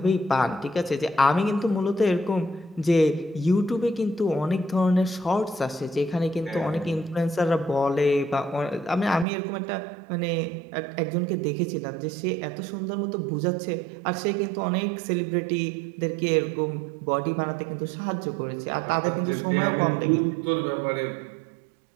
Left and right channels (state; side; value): drops out; left; at 9.2 s